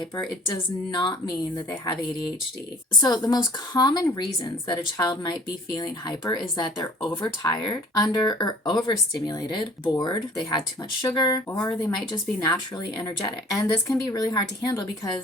it does not mean that they have ADHD. So the most common reasons that a child might be feeling hyper is that they're overtired, under or overstimulated, bored, they had too much sugar, or they might just be naturally energetic. And this can be really hard to handle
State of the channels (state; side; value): normal; both; correlation 0.50